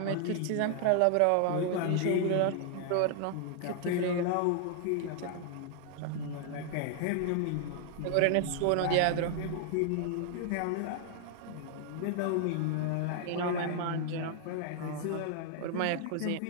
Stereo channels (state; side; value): different; both; correlation 0.00